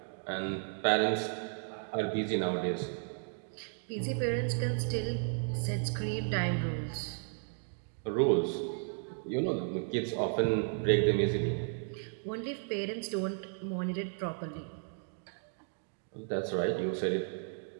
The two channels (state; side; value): silent; left; 55 dB below the other